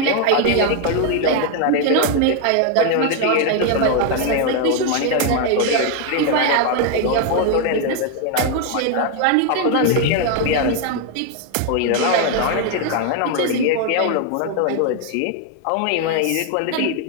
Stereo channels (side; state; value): both; different; correlation 0.01